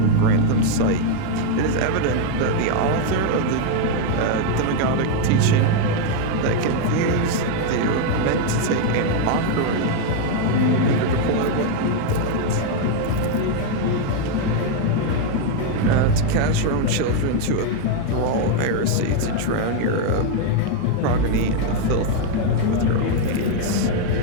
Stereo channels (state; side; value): different; both; correlation 0.01